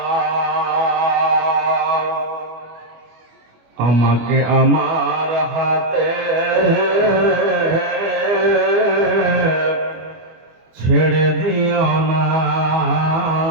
আমাকে আমার হাতে ছেড়ে দিও না,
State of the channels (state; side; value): late; left; 25 ms